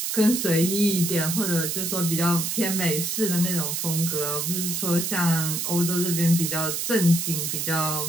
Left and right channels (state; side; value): noise; right; hiss, 1 dB below the sound